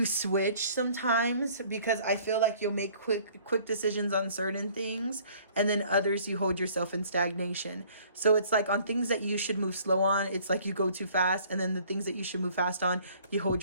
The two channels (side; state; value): both; inverted; correlation -0.55